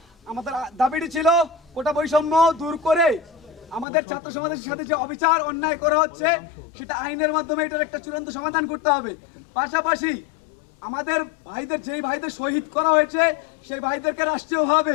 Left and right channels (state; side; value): drops out; right; at 3.9 s